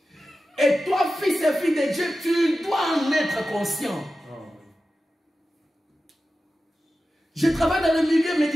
Et toi, fils et fille de Dieu, tu dois en être conscient. Je travaille dans le milieu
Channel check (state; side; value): normal; both; correlation 0.93